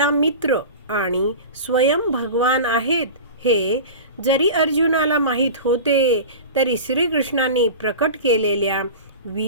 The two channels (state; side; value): inverted; both; correlation -0.32